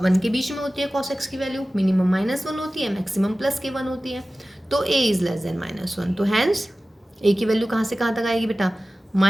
1 के बीच में होती है cos x की वैल्यू, मिनिमम -1 होती है, मैक्सिमम +k1 होती है। तो a इज़ लेस देन -1, तो हैंस a की वैल्यू कहाँ से कहाँ तक आएगी बेटा,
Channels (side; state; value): both; normal; correlation 0.96